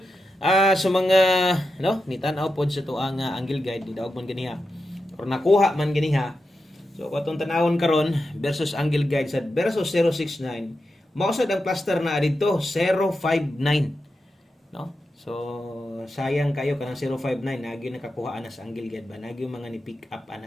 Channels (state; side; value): normal; both; correlation 0.89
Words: Sa mga no nitan-aw pod sa to ang angle guide ni daog man ganiha or nakuha man ganiha. So katong tanawon karon versus angle guide sa versus 069 mao sad ang cluster na dito 059 no. So sayang kayo kanang 059 nagi nakakuha na sa angle guide ba nagi mga ni pick up